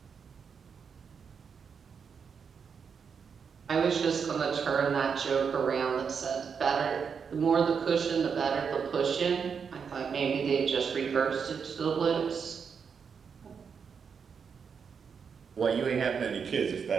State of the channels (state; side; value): quieter; left; 6.4 dB